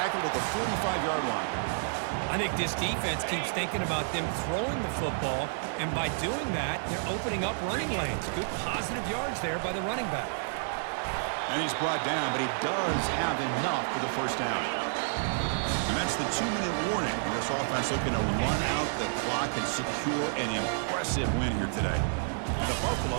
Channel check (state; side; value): silent; left; digital silence